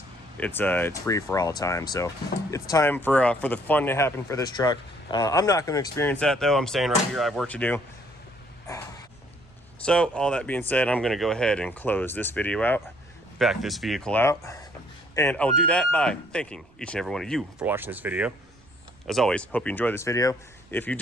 it's free for all time. So it's time for the fun to happen for this truck. I'm not going to experience that though. I'm staying right here. I have work to do. So all that being said, I'm going to go ahead and close this video out, back this vehicle out, and I'll do that by thanking each and every one of you for watching this video. As always, hope you enjoyed this video. If you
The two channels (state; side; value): noise; right; rumble, 29 dB below the sound